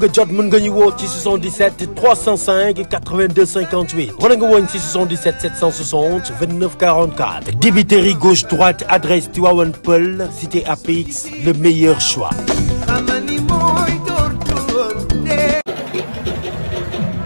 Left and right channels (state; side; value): inverted; both; correlation -1.00